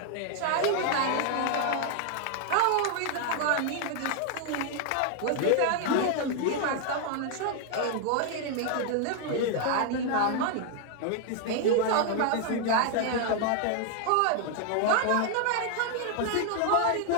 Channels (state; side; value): different; both; correlation 0.00